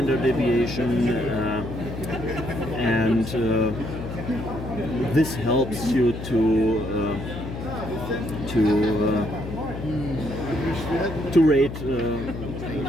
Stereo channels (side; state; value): left; noise; hum, 8 dB below the sound